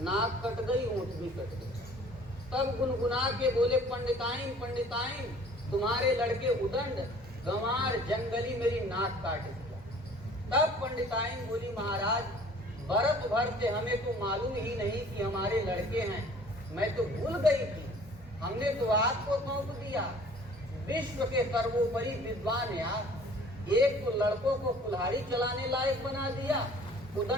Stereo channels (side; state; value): both; normal; correlation 0.51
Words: कट गई, ओंठ भी कट गई। तब गुनगुना के बोले, पंडिताइन पंडिताइन, तुम्हारे लड़के उदंड गंवार जंगली मेरी नाक काट दिया। तब पंडिताइन बोली, महाराज, बरस भर से हमें तो मालूम ही नहीं कि हमारे लड़के हैं, मैं तो भूल गई थी, हमने तो आपको सौंप दिया। विश्व के सर्वोपरि विद्वान यार, एक तो लड़कों को कुल्हाड़ी चलाने लायक बना दिया,